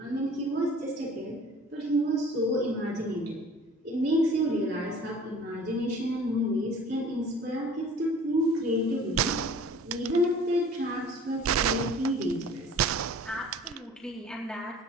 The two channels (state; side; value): normal; both; correlation 0.48